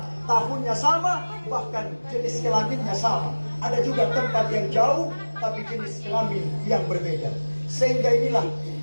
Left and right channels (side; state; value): both; inverted; correlation -1.00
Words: tahunnya sama, bahkan jenis kelaminnya sama. Ada juga tempat yang jauh, tapi jenis kelamin yang berbeda. Sehingga inilah